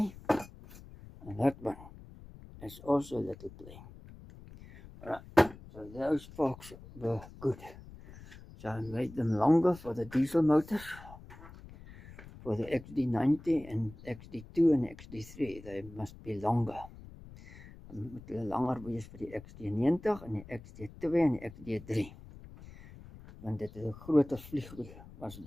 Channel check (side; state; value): left; noise; rumble, 18 dB below the sound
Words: And that one is also little play. Alright, so those forks were good. So I made them longer for the diesel motors. For the XD90 and XD2 and XD3, they must be longer. Moet hulle langer wees vir die XD90 en die XD2 en die XD3. Want dit is 'n groter vliegwiel as